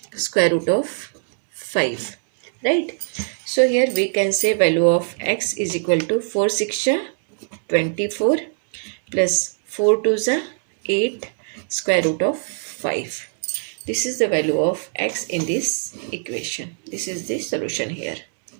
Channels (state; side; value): silent; left; digital silence